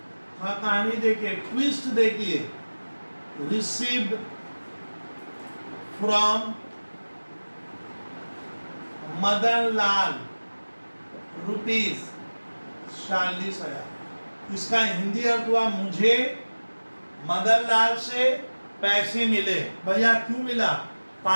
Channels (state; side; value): inverted; both; correlation -1.00